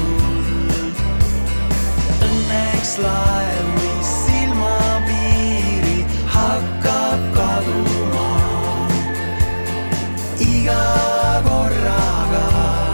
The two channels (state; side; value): inverted; both; correlation -1.00